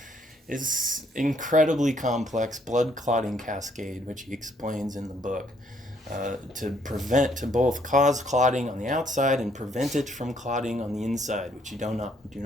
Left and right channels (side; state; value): both; normal; correlation 0.68